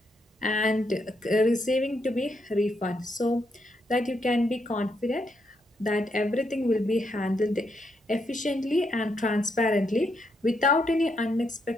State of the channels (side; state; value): both; normal; correlation 0.78